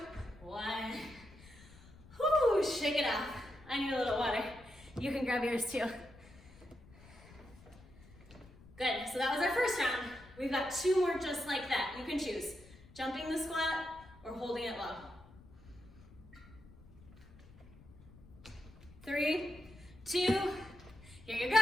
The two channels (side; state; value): left; noise; rumble, 21 dB below the sound